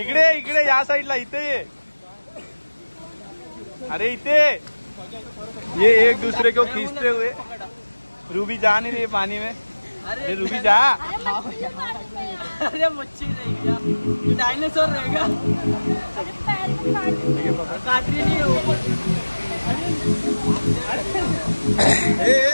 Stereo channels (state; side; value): inverted; both; correlation -1.00